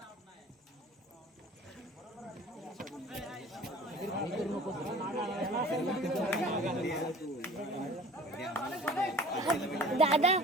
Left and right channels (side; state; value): both; normal; correlation 0.46